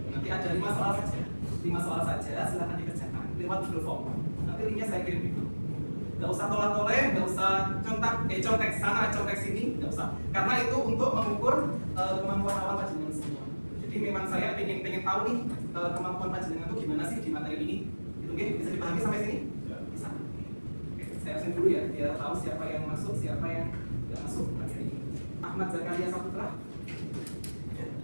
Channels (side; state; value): both; inverted; correlation -1.00